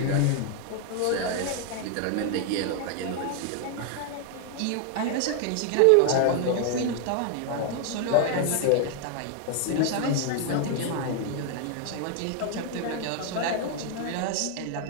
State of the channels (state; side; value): different; both; correlation 0.00